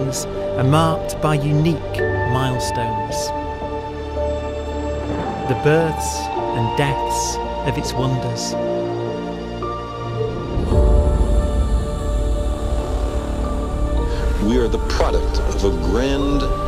are marked by unique milestones. The births and deaths of its wonders. We are the product of a grand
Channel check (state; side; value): identical; both; correlation 1.00